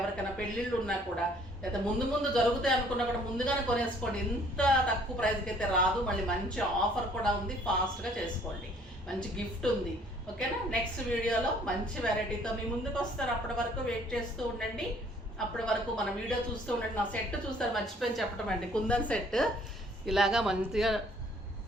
పెళ్ళిళ్ళు ఉన్నా కూడా, లేదా ముందు జరుగుతాయి అనుకున్నా కూడా ముందుగానే కొనేసుకోండి. ఇంత తక్కువ ప్రైస్కి అయితే రాదు. మళ్ళీ మంచి ఆఫర్ కూడా ఉంది, ఫాస్ట్గా చేసుకోండి. మంచి గిఫ్ట్ ఉంది. ఓకేనా? నెక్స్ట్ వీడియోలో మంచి వెరైటీతో మీ ముందుకు వస్తారు. అప్పటి వరకు వెయిట్ చేస్తూ ఉండండి. అప్పటి వరకు మన వీడియో చూస్తూ ఉండండి. నా సెట్ చూస్తారు, మర్చిపోయి చెప్పడం అండి. కుందన్ సెట్ ఇలాగా మంచిగా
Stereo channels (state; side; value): normal; both; correlation 0.59